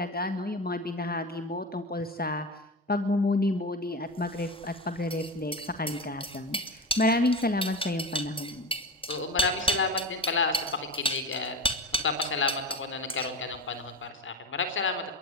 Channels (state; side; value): normal; both; correlation 0.26